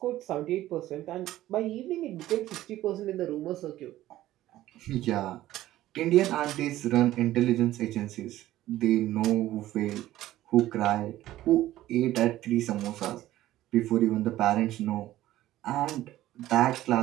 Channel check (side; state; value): left; quieter; 14.7 dB